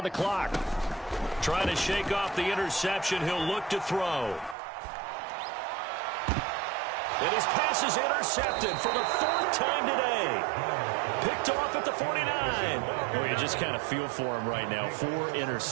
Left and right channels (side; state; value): left; drops out; at 4.5 s